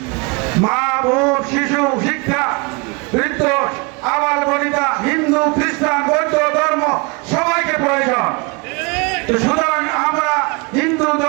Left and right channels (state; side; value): quieter; left; 29.6 dB